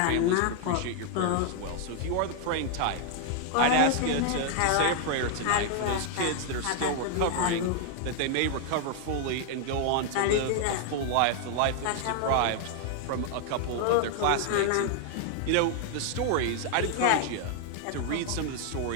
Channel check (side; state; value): both; different; correlation 0.00